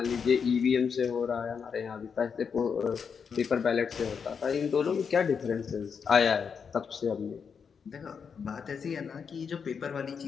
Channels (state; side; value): quieter; right; 6.3 dB